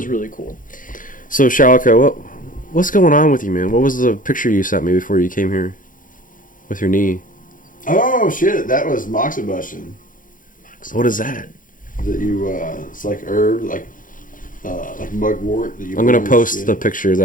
really cool. So Shalako, what's going on with you, man? What was the picture you sent me before you came here with your knee? Oh shit! That was moxibustion. What is that? That you it's like herb, like mugwort. That you I'm gonna put on your post skin. the picture. Is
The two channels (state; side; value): late; right; 0.39 ms